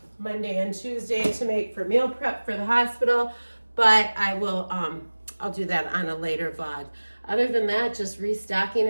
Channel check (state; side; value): inverted; both; correlation -1.00